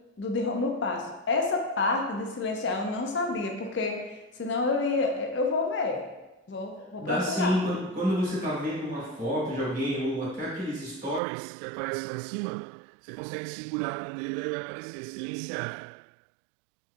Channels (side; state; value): left; drops out; at 11.2 s